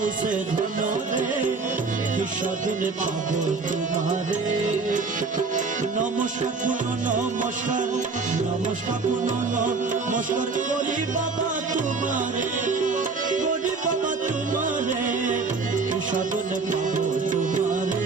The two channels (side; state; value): left; quieter; 4.3 dB